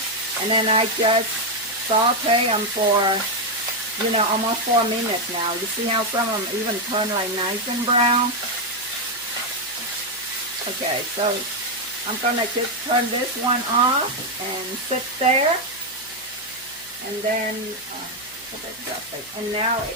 and then I just saute them for, you know, almost 4 minutes now. You see how some of them even turn like nice and brown? Okay, so I'm gonna just turn this one off and sit there. And then, and now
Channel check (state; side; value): noise; left; hum, 27 dB below the sound